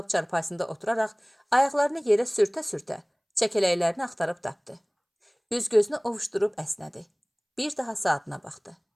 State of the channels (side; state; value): both; identical; correlation 1.00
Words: çarpayısında oturaraq ayaqlarını yerə sürtə-sürtə çəkələklərini axtarıb tapdı. Üz-gözünü ovuşdurub əsnədi. Bir daha saatına baxdı.